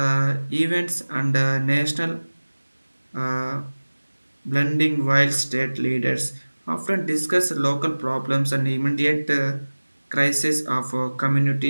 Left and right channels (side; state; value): both; inverted; correlation -1.00